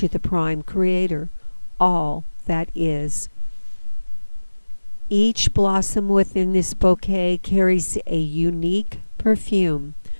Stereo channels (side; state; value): both; inverted; correlation -1.00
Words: the Prime Creator, all that is. Each blossom within this bouquet carries a unique perfume,